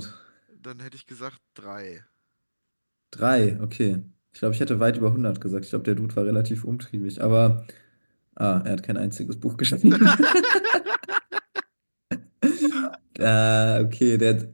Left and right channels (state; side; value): inverted; both; correlation -1.00